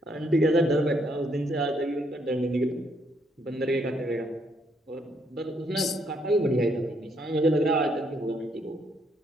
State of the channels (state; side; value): normal; both; correlation 0.71